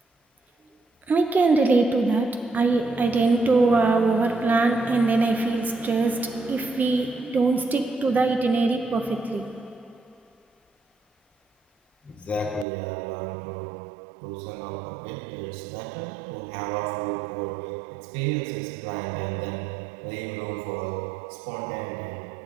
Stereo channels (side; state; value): left; drops out; at 12.7 s